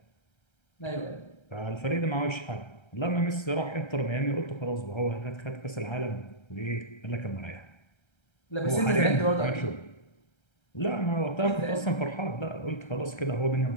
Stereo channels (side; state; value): right; late; 1.3 ms